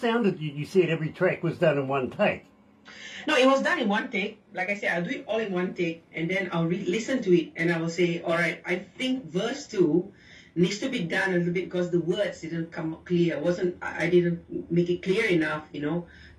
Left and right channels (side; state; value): both; identical; correlation 1.00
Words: you said every track was done in one take. No, it was done in one take. Like I said, I'll do it all in one take, and then I'll listen to it, and I will say, all right, I think verse 2 needs to be done a little bit because the words didn't come clear. I didn't make it clear enough,